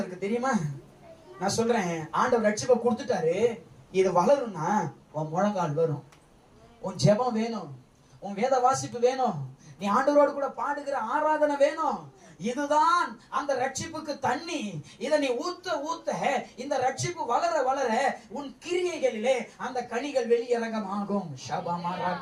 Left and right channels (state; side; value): identical; both; correlation 1.00